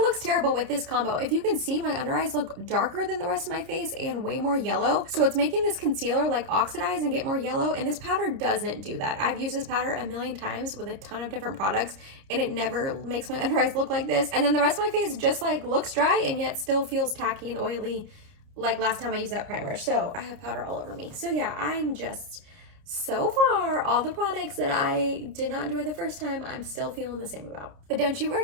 terrible with this combo. If you can see, my under eyes look darker than the rest of my face and way more yellow. So it's making this concealer like oxidize and get more yellow, and this powder doesn't do that. I've used this powder a million times with a ton of different products, and it never makes my under eyes look like this. And then the rest of my face just like looks dry and yet still feels tacky and oily like last time I used that primer. So I have powder all over me. So yeah, I'm just, so far, all the products that I did not enjoy the first time, I'm still feeling the same about. But don't you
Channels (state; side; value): late; left; 30 ms